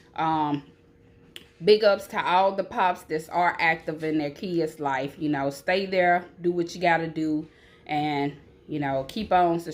Big ups to all the pops that are active in their kids' life. You know, stay there, do what you got to do, and, you know, keep on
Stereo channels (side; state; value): both; identical; correlation 1.00